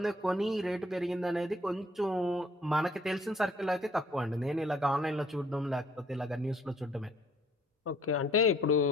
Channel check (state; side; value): normal; both; correlation 0.61